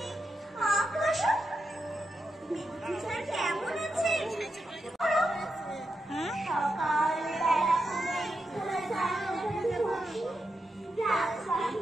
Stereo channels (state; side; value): normal; both; correlation 0.86